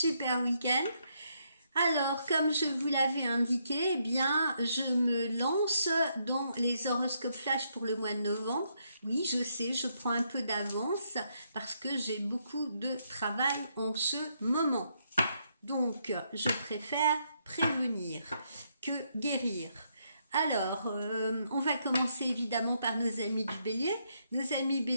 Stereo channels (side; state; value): both; inverted; correlation -0.76